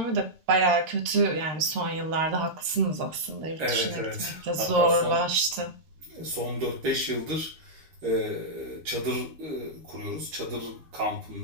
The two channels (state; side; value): late; left; 13 ms